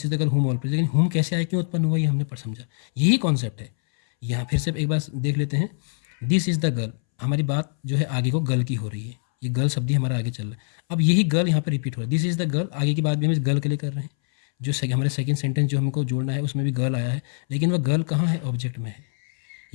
is the girl home all praise. लेकिन होम कैसे आया, क्यों उत्पन्न हुआ, ये हमने पर समझा, यही कॉन्सेप्ट है। यहाँ फिर से एक बार देख लेते हैं, दिस इज़ द गर्ल, हमारी बात जो है आगे को गर्ल की हो रही है, ये गर्ल शब्द ही हमारा आगे चल रहा है। अब यही गर्ल यहाँ पर रिपीट हो रहा है, दिस इज़ द गर्ल, आगे की बात भी हम इस गर्ल के लिए कर रहे हैं। जो हमारे सेकंड सेंटेंस जो हमको जोड़ना है उसमें भी गर्ल आया है, लेकिन वह गर्ल कहाँ है, ऑब्जेक्ट में है।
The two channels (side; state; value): right; silent; 63 dB below the other